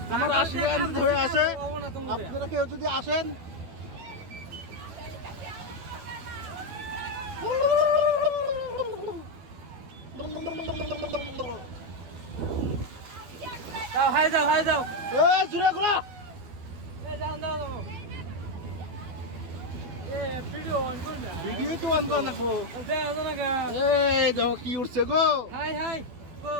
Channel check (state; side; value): late; left; 12 ms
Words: আমার আশীর্বাদ হয়ে আছে, আপনারা কেউ যদি আসেন যাও জুড়ে ঘোরা ভিডিও তো আনবো নাকবো। এই দেখো কি উঠছে গো,